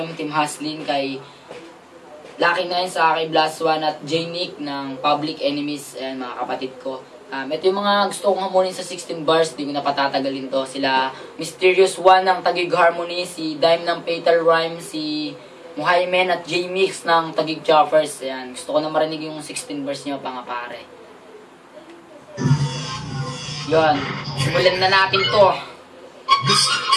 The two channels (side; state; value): both; identical; correlation 1.00